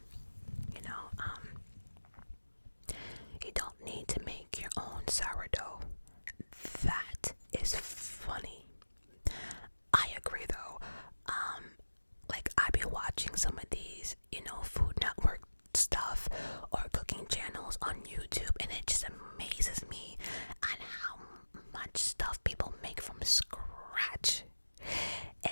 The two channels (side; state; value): both; inverted; correlation -1.00